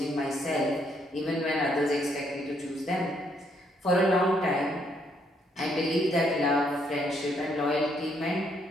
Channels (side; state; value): both; normal; correlation 0.71